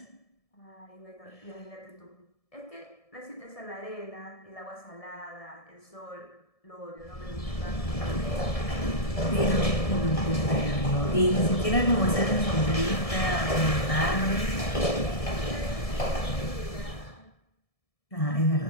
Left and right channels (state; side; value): late; right; 1.7 ms